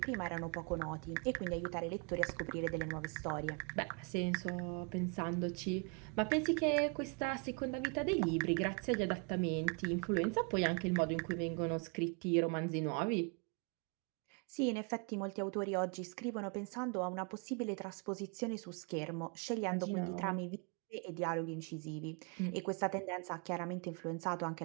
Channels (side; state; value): left; quieter; 34.5 dB